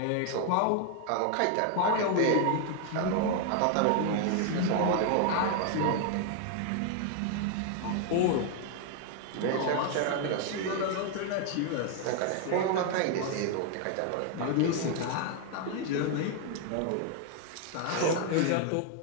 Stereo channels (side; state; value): both; different; correlation 0.00